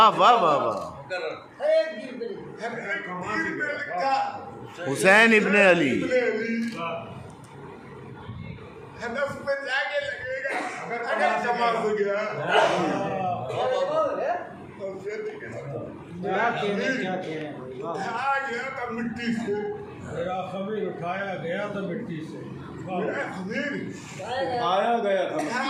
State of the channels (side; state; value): both; identical; correlation 1.00